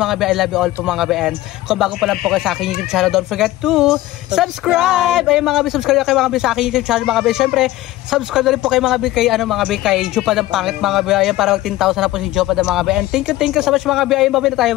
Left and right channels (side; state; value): right; quieter; 16.4 dB